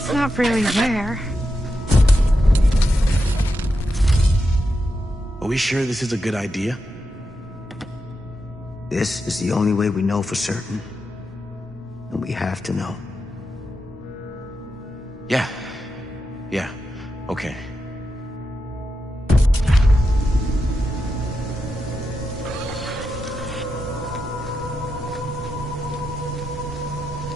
not really there. Are we sure this is a good idea? This is the only way we know for certain. And we have to know. Yeah. Okay.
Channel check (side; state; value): both; normal; correlation 0.87